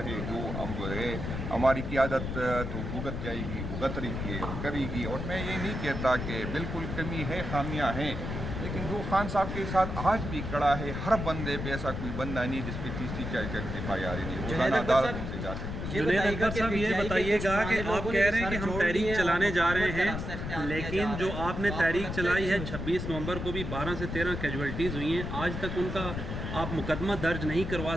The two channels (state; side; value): noise; left; rumble, 5 dB below the sound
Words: ہے جو ہم جو ہے ہماری قیادت تو بھگت جائے گی، بھگت رہی ہے اور کرے گی. اور میں یہ نہیں کہتا کہ بالکل کمی ہے، خامیاں ہیں، لیکن جو خان صاحب کے ساتھ آج بھی کڑا ہے، ہر بندے پہ ایسا کوئی بندہ نہیں جس پہ 30-40 FIR نہیں. روزانہ عدالتوں سے جاتے ہیں. جنید اکبر صاحب یہ بتائیے گا کہ آپ کہہ رہے ہیں کہ ہم تحریک چلانے جا رہے ہیں، لیکن جو آپ نے تحریک چلائی ہے 26 نومبر کو بھی 12 سے 13 کیجویلٹیز ہوئی ہیں، آج تک ان کا آپ مقدمہ درج نہیں کروا